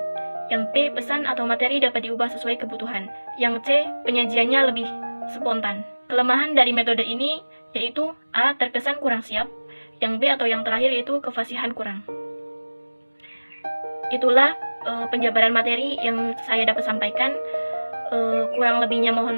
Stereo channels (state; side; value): inverted; both; correlation -1.00